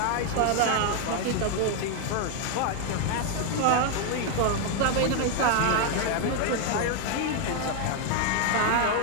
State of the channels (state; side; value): different; both; correlation 0.01